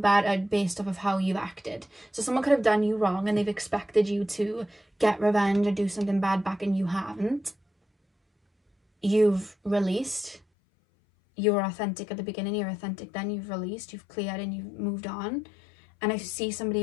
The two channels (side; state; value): right; drops out; at 10.4 s